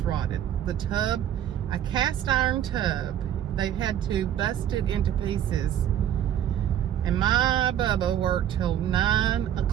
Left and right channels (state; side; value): quieter; left; 10.6 dB